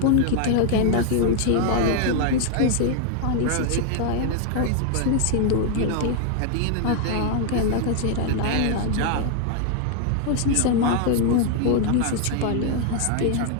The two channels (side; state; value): both; different; correlation 0.00